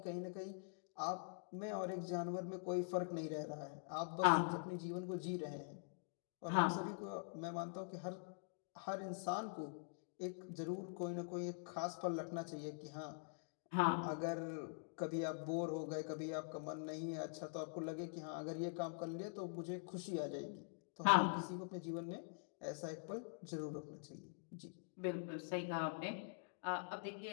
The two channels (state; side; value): silent; right; digital silence